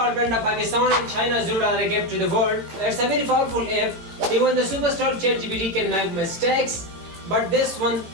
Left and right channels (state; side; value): late; left; 18 ms